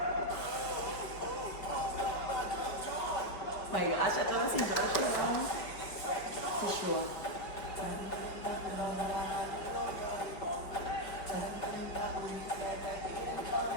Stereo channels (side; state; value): right; late; 5.4 ms